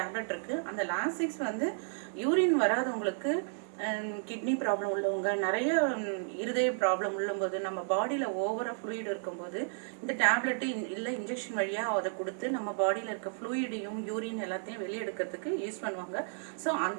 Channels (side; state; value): left; silent; digital silence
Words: டேப்லெட் இருக்குது. அந்த லாசிக்ஸ் யூரின் வராதவங்களுக்கு, கிட்னி ப்ராப்ளம் உள்ளவங்க, நிறைய இருதய ப்ராப்ளம் உள்ளபோது, நம்ம பாடியில் ஓவராக ஃப்ளூயிட் இருக்கும்போது இந்த டேப்லெட்டு இல்லை இன்ஜெக்ஷன் வழியாக அதை கொடுத்து நம்ம பாடியில் இருக்க ஃப்ளூயிடையும் யூரின் எல்லாத்தையும் வெளியெடுக்கிறதுக்கு யூஸ் பண்ணுவாங்க. ஸோ